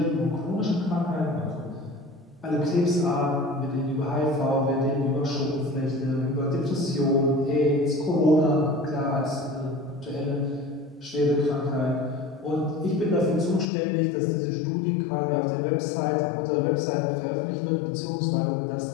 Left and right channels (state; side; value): drops out; right; at 13.7 s